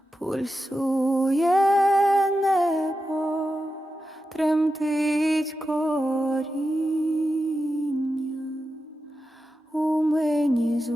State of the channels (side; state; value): both; normal; correlation 0.90